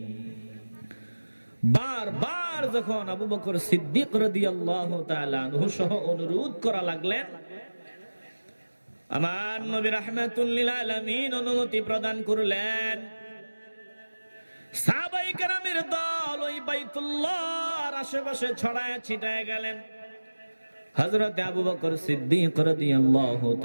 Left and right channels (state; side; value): inverted; both; correlation -1.00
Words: বারবার যখন আবু বকর সিদ্দিক রাদিয়াল্লাহু তাআলা আনহু সহ অনুরোধ করা লাগলেন, আমার নবী রাহমাতুল লিল আলামিন অনুমতি প্রদান করলেন। সাহাবায়ে কেরামের দল ওই বাইতুল্লাহর আশেপাশে ছড়ায় ছিটায় গেলেন। হযরত আবু বকর সিদ্দিক রাদিয়াল্লাহু